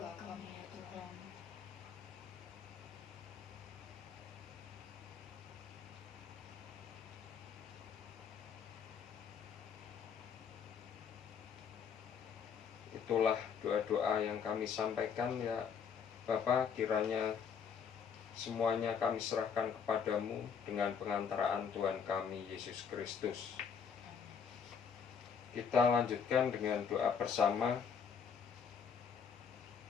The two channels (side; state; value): right; quieter; 6.8 dB